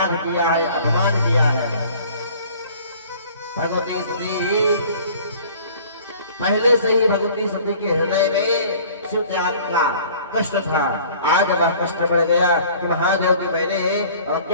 किया है, अपमान किया है। भगवती सती पहले से ही भगवती सती के हृदय में शिव त्याग का कष्ट था। आज वह कष्ट बढ़ गया कि महादेव की मैंने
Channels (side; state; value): both; inverted; correlation -0.50